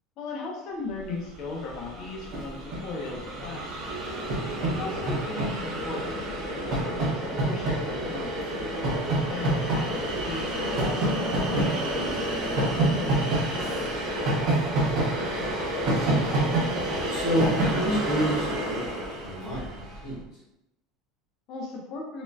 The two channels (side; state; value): both; normal; correlation 0.33